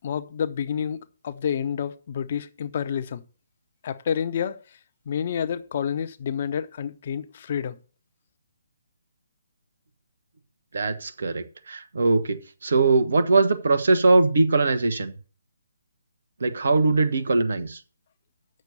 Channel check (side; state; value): both; inverted; correlation -0.82